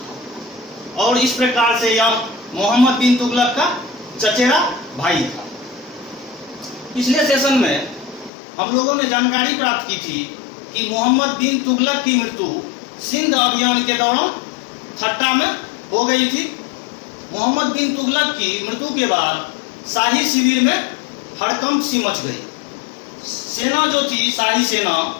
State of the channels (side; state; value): right; drops out; at 8.3 s